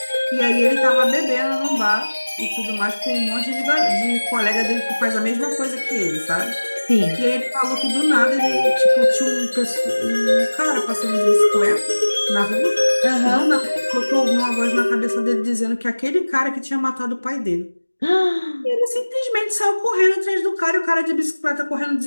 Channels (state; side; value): inverted; both; correlation -1.00